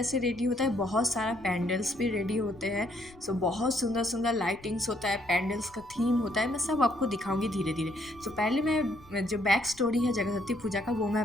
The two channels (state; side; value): noise; left; rumble, 24 dB below the sound